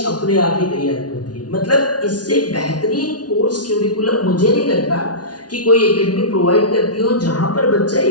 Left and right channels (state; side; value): late; right; 0.69 ms